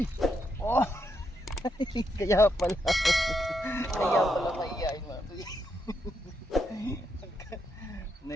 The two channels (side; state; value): both; normal; correlation 0.80